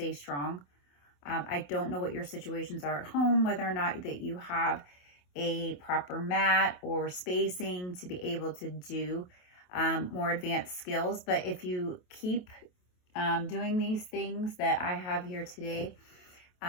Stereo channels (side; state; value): right; late; 28 ms